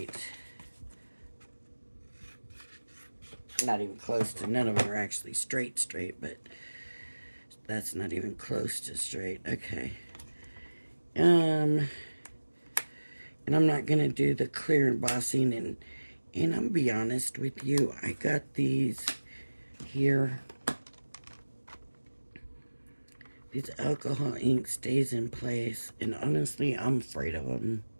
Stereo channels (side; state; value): both; inverted; correlation -1.00